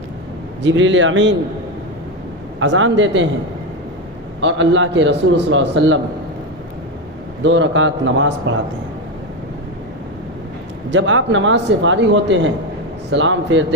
جبریل امین اذان دیتے ہیں اور اللہ کے رسول صلی اللہ علیہ وسلم 2 رکعت نماز پڑھاتے ہیں۔ جب آپ نماز سے فارغ ہوتے ہیں سلام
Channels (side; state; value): both; normal; correlation 0.13